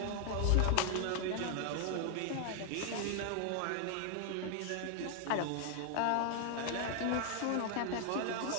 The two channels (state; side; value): different; both; correlation 0.00